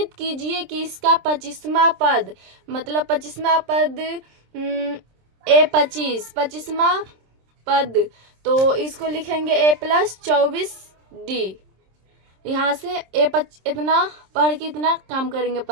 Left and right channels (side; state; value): left; late; 26 ms